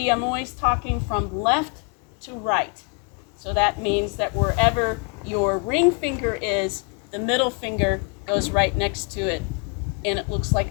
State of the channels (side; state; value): right; quieter; 36.1 dB